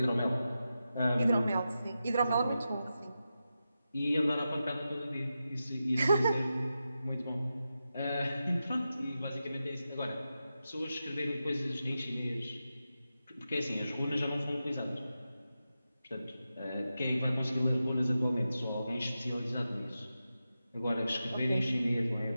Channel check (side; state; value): both; inverted; correlation -0.91